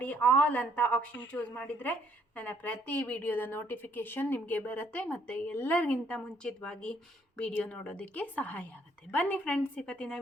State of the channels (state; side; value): normal; both; correlation 0.66